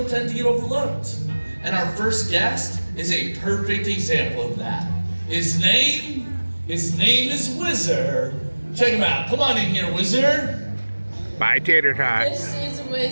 tend to get overlooked. And our first guest is a perfect example of that. His name is Whizzer. Check him out. Come on in here, Whizzer. Bye, Tater Tot. This is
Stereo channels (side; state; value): both; inverted; correlation -1.00